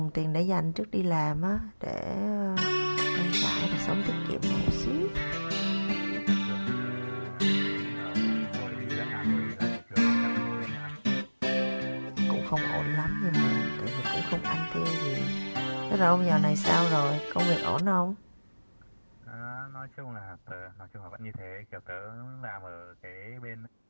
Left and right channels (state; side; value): inverted; both; correlation -1.00